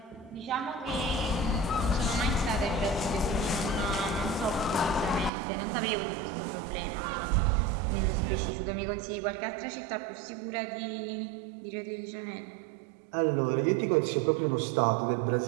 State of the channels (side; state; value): left; drops out; at 5.3 s